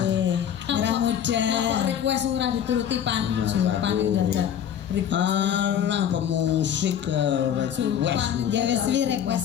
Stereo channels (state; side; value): quieter; right; 9.3 dB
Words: Merah muda. Kok request ora dituruti pan Pan dadak. Alah pemusik request. Ya wis